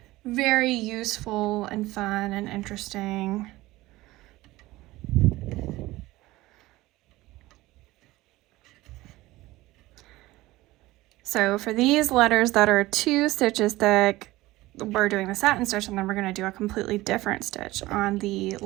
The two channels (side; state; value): left; quieter; 18.4 dB